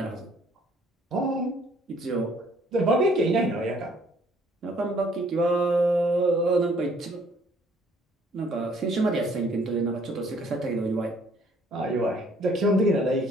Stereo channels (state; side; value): normal; both; correlation 0.61